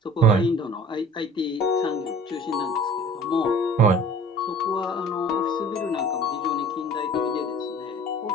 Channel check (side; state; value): both; normal; correlation 0.46